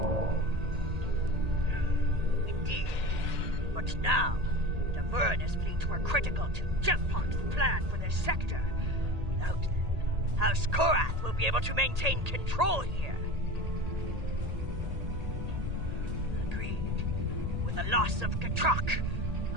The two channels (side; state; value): left; late; 1.8 ms